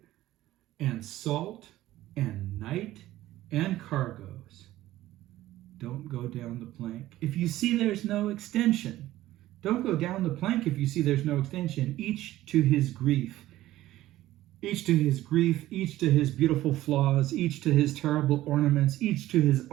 and salt and night and cargoes. Don't go down the plank if you see there's no extension. Don't go down the plank if you see there's no extension. Each to his grief. Each to his grief, each to his beautiful flaws, each to his terrible ornaments, each to his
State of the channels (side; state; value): left; quieter; 15.2 dB